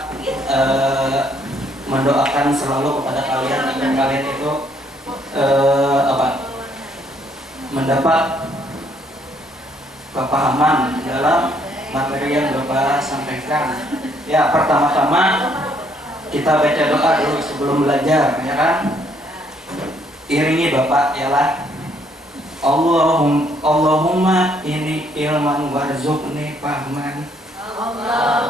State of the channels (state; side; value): normal; both; correlation 0.68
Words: mendoakan selalu kepada kalian agar kalian itu mendapat kepahaman dalam materi yang Bapak sampaikan. Ya, pertama-tama kita baca doa dulu sebelum belajar, ya kan? Iringi Bapak ialah Allahumma ini ilman warzuqni fahman.